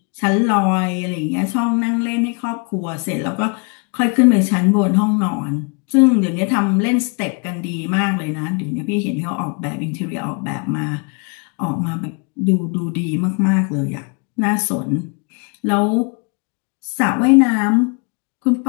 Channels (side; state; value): right; quieter; 35.5 dB